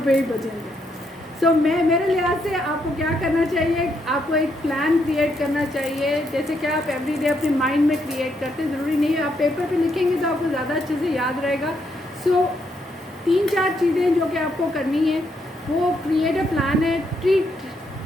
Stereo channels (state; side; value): normal; both; correlation 0.77